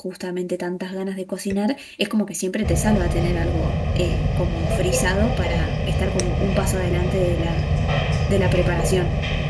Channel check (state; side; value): identical; both; correlation 1.00